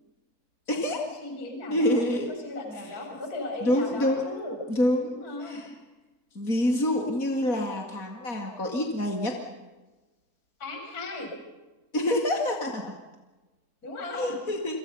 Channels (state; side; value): late; right; 4.1 ms